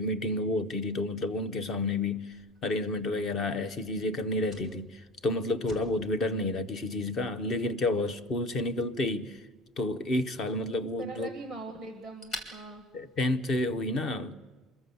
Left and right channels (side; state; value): both; normal; correlation 0.36